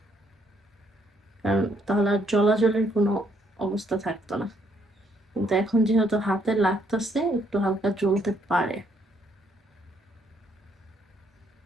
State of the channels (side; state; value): both; normal; correlation 0.70